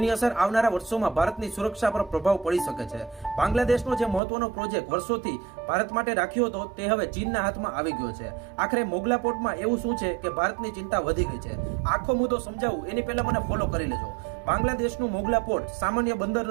અસર આવનારા વર્ષોમાં ભારતની સુરક્ષા પર પ્રભાવ પડી શકે છે. બાંગ્લાદેશનો જે મહત્વનો પ્રોજેક્ટ વર્ષોથી ભારત માટે રાખ્યો હતો તે હવે ચીનના હાથમાં આવી ગયો છે. આખરે મોગલા પોર્ટમાં એવું શું છે કે ભારતની ચિંતા વધી ગઈ છે? આખો મુદ્દો સમજાવું એની પહેલા મને ફોલો કરી લેજો. બાંગ્લાદેશનું મોગલા પોર્ટ સામાન્ય બંદર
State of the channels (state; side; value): drops out; left; at 4.2 s